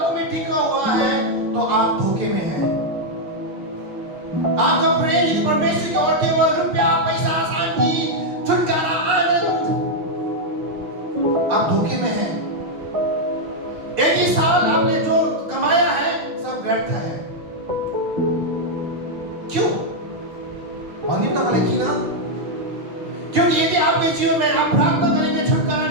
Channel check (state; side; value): late; left; 6.6 ms